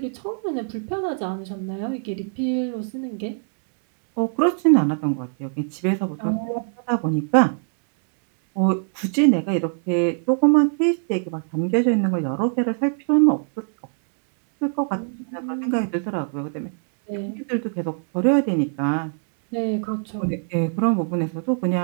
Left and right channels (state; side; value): silent; left; 63 dB below the other